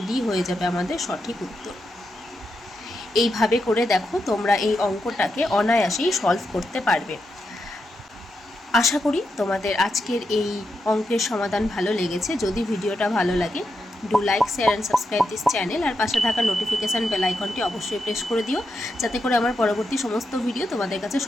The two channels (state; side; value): normal; both; correlation 0.85